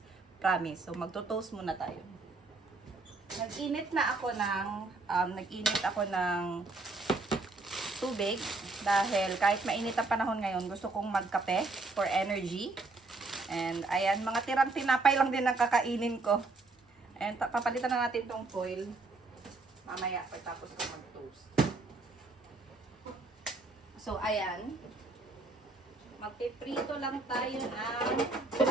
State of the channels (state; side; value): quieter; left; 3.4 dB